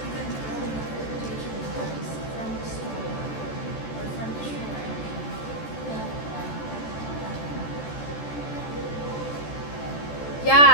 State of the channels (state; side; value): late; right; 14 ms